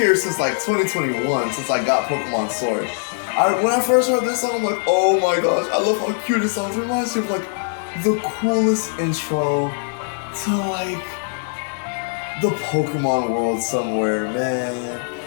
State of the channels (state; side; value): silent; right; digital silence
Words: since like 2021, since I got Pokemon Sword. When I first heard this song, I'm like, oh my gosh, I love how cute it sounds. It reminds me of like the coolest intro to like the Pokemon world somewhere, man.